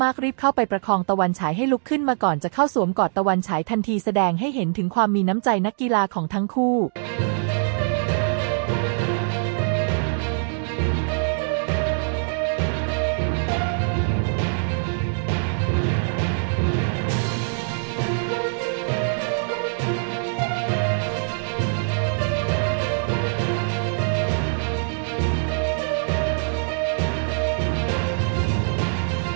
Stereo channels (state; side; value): silent; left; digital silence